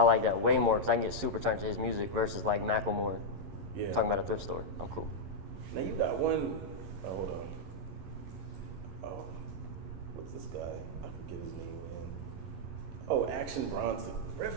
that way more because I can get super turned to his music versus like Macklemore. Yeah. Talking about a thrift store. I'm cool. Now you got one. Oh, hold on. Oh, what's this guy? I forget his name again. Oh, Action Bronson.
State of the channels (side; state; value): left; late; 11 ms